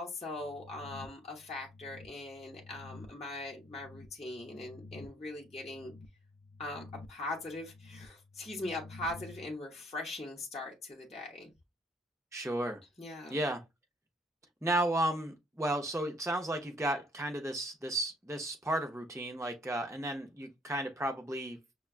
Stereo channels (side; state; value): both; normal; correlation 0.64